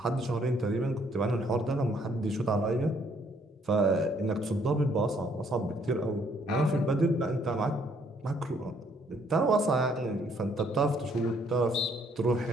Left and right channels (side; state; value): both; normal; correlation 0.66